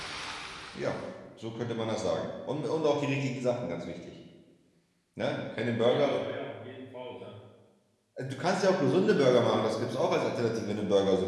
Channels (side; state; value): both; identical; correlation 1.00